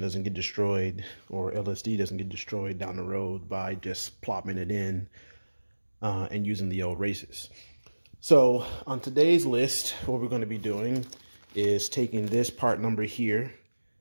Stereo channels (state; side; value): inverted; both; correlation -1.00